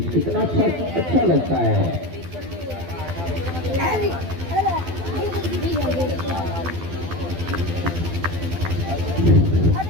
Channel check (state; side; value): late; left; 12 ms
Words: कितना अच्छा लगता है।